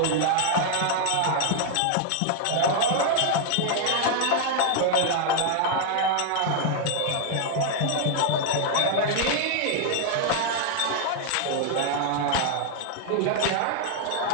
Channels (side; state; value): both; different; correlation 0.00